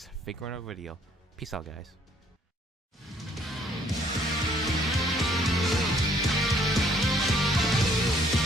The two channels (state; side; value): normal; both; correlation 0.63